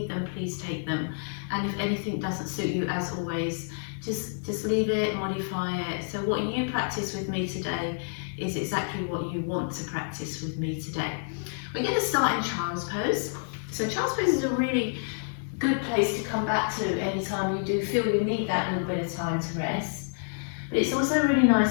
them, please take them. And if anything doesn't suit you, as always, just leave it, modify it. So what you practice with me today is exactly what you want to practice with me today. We're going to start in child's pose. So child's pose is a really good place to come back to anytime you do feel you need that little bit of time to rest. But it's also a really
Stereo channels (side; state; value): right; silent; 59 dB below the other